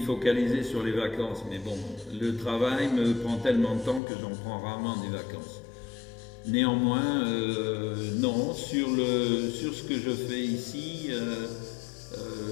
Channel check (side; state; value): right; drops out; at 4.0 s